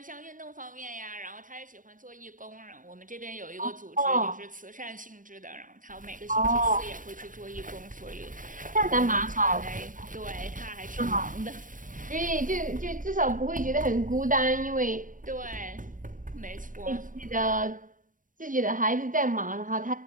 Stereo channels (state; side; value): late; left; 0.38 ms